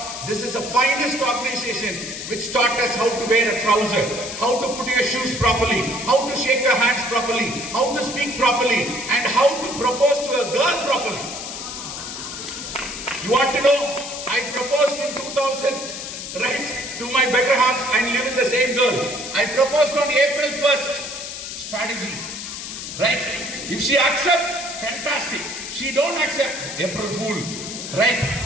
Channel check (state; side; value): noise; left; hiss, 8 dB below the sound